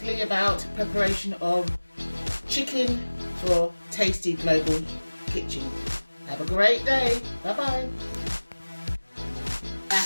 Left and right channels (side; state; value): both; inverted; correlation -1.00